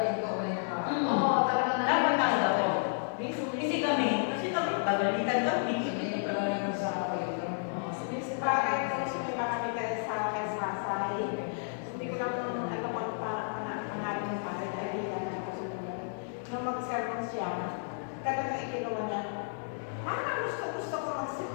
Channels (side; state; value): right; silent; digital silence